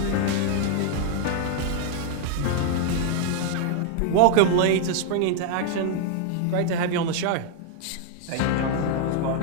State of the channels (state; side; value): different; both; correlation 0.00